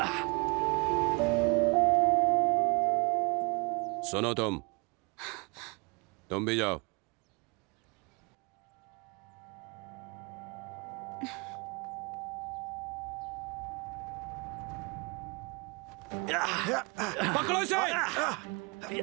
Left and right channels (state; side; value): quieter; left; 30.8 dB